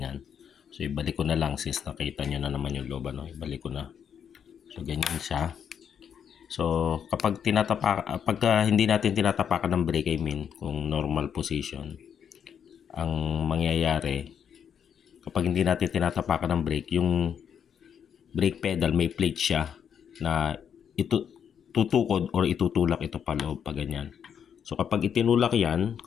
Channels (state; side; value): quieter; right; 8.0 dB